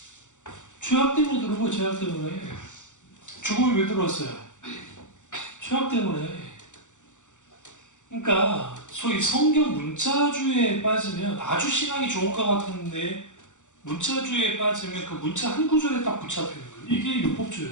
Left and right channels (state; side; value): late; right; 0.85 ms